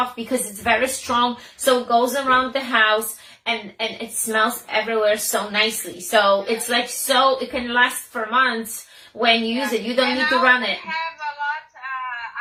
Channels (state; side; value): identical; both; correlation 1.00